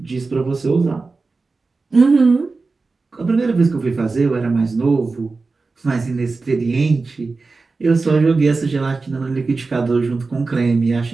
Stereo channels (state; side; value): quieter; left; 3.9 dB